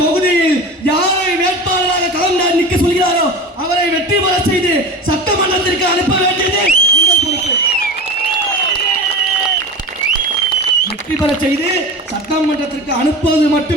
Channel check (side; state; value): both; normal; correlation 0.30